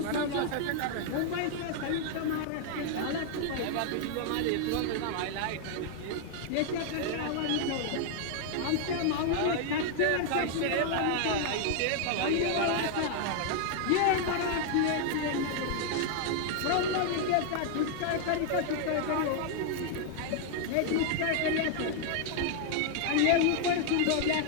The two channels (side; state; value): both; different; correlation 0.00